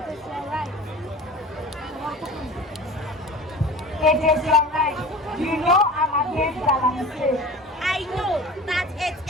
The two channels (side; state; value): both; normal; correlation 0.38